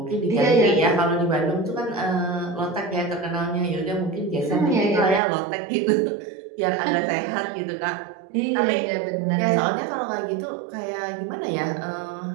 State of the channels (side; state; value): left; drops out; at 5.2 s